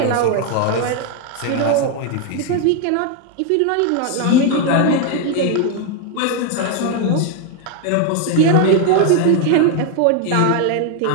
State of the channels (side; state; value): both; different; correlation 0.01